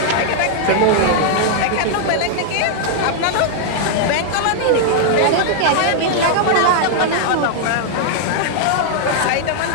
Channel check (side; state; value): both; different; correlation -0.01